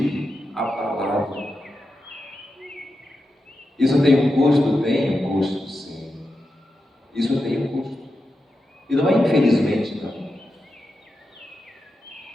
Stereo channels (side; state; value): both; normal; correlation 0.89